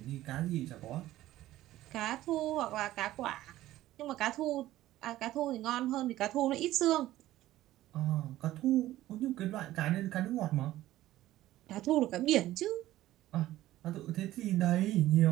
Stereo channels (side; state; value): left; quieter; 15.0 dB